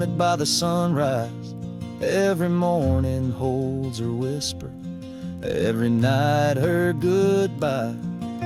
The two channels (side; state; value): both; identical; correlation 1.00